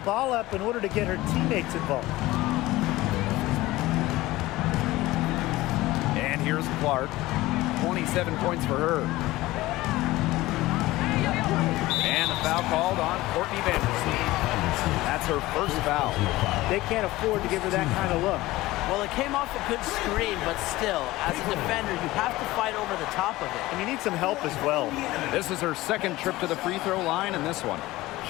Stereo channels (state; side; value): quieter; right; 18.2 dB